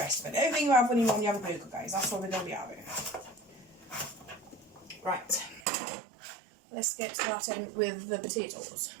of it. Everything you have when you have a burger, guys. That's what we're going to be having. Right. Let's get started with the potatoes.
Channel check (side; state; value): left; drops out; at 5.6 s